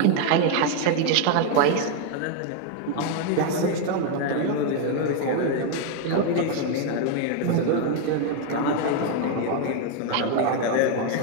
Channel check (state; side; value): different; both; correlation 0.00